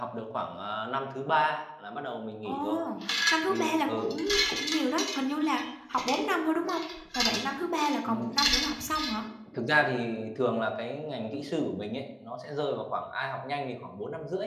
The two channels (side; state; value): both; identical; correlation 1.00